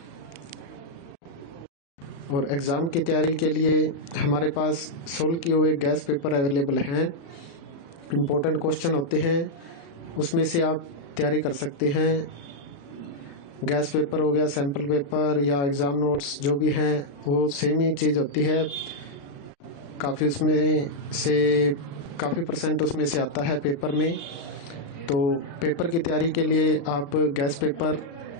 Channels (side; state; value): right; late; 35 ms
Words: और एग्ज़ाम की तैयारी के लिए हमारे पास सोल्व किए हुए गैस पेपर अवेलेबल हैं। इम्पोर्टेंट क्वेश्चन होते हैं, उसमें से आप तैयारी कर सकते हैं। गैस पेपर हो गया, सैम्पल पेपर या एग्ज़ाम नोट्स जो भी हैं वो सेम ही चीज़ होती है। काफ़ी परसेंट उसमें से आता है पेपर में। तो पेपर की तैयारी के लिए आप गैस पेपर